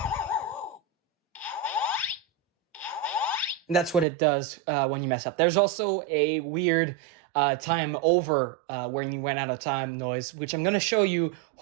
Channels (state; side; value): drops out; left; at 4.0 s